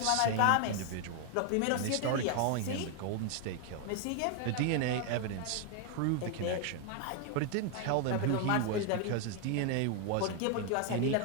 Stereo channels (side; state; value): both; different; correlation 0.01